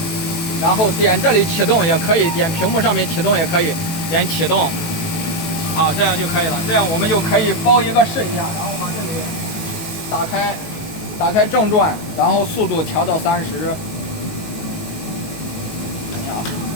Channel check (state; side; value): late; right; 18 ms